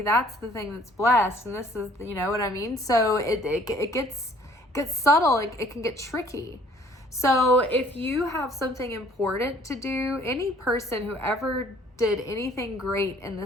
that's the thing that's blessed, and this is, you know what I mean? So it gets subtle, it can get tricky. So if you have something important to do, any person who ever did anything great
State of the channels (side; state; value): both; normal; correlation 0.57